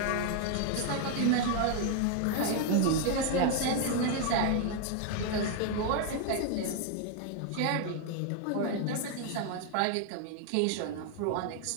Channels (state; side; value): different; both; correlation 0.01